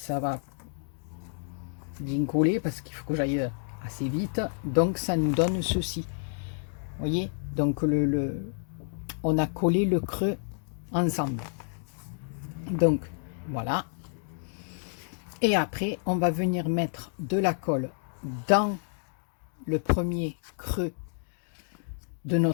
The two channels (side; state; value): right; silent; digital silence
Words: va bien coller parce qu'il faut que j'aille assez vite. Donc, ça nous donne ceci. Voyez, donc on a collé le creux ensemble. Donc voilà. Et après, on va venir mettre de la colle dans le premier creux de